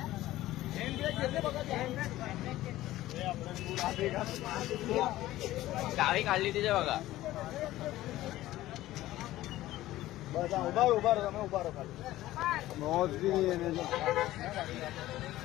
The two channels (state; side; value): quieter; right; 15.7 dB